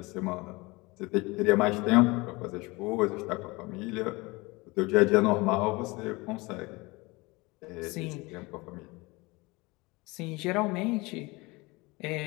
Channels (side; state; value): right; quieter; 24.1 dB